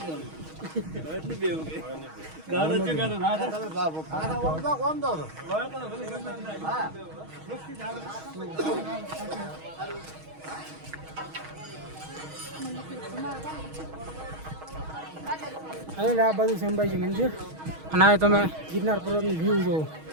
એટલે આ બધું છે અંબાજી મંદિર. અને આ તમે ગિરનાર પર્વતનું વ્યૂ જોવો.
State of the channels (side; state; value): left; late; 6.3 ms